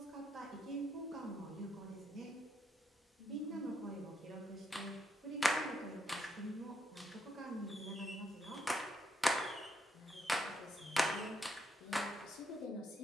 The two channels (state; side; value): normal; both; correlation 0.76